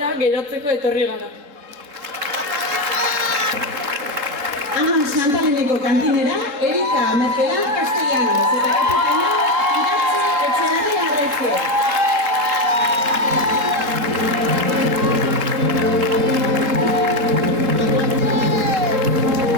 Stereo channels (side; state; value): left; late; 3.7 ms